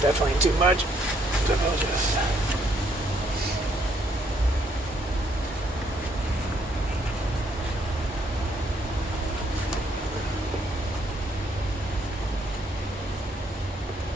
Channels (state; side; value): normal; both; correlation 0.70